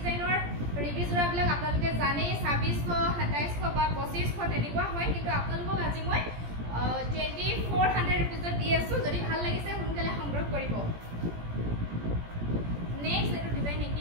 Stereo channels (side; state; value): left; late; 17 ms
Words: ৰিভি জোৰাবিলাক আপোনালোকে জানে 2600 2700 বা 2500 তেনেকুৱা হয় কিন্তু আপোনালোকক আজি মই 2400 रुपीजত দি আছো যদি ভাল লাগিছে সোনকালে সংগ্ৰহ কৰিব নেক্সট এটো ডিজাইন